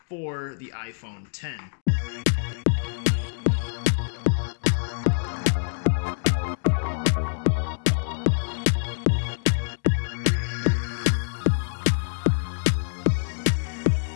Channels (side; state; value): right; silent; digital silence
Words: for the iPhone X.